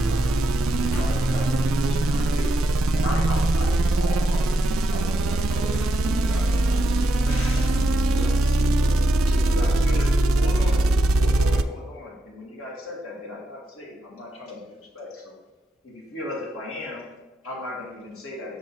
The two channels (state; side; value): normal; both; correlation 0.84